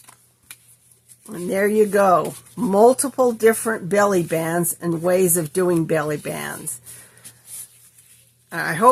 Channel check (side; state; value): both; identical; correlation 1.00